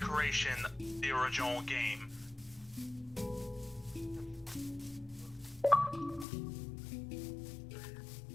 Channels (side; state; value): right; drops out; at 6.2 s